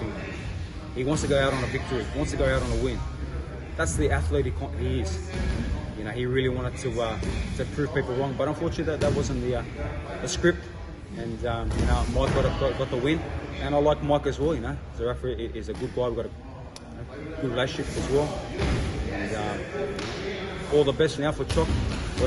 He wants to go out on a victory, he wants to go out on a win. That's the athlete he is. He really wanted to prove people wrong, but unfortunately that wasn't the script. And Mike got the win, and I like Mike as well. Zerafa is a good guy. We've got a good relationship as well. And all the best now for Chok,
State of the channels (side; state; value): both; identical; correlation 1.00